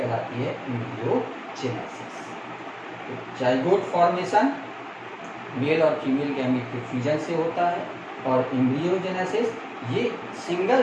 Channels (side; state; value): both; identical; correlation 1.00